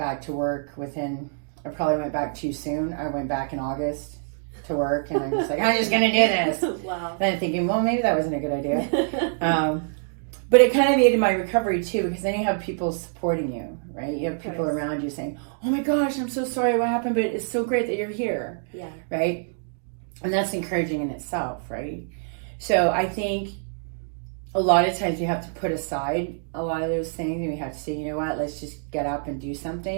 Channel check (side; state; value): left; silent; digital silence